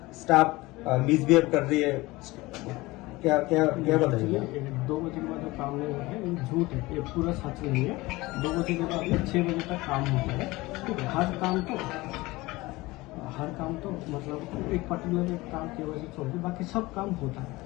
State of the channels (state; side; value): quieter; right; 20.9 dB